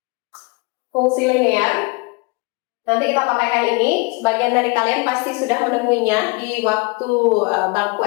Fungsi linear nanti kita pakaikan ini, sebagian dari kalian pasti sudah menemuinya di waktu bangku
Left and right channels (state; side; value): quieter; right; 27.9 dB